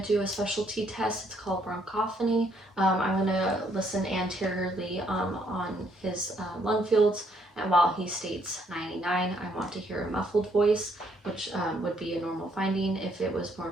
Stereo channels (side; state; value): both; normal; correlation 0.70